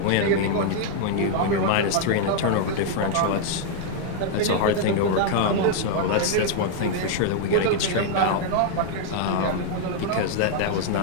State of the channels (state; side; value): different; both; correlation 0.00